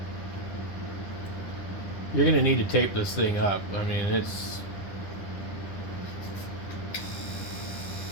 you're going to need to tape this thing up. I mean, it's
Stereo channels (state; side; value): late; right; 10 ms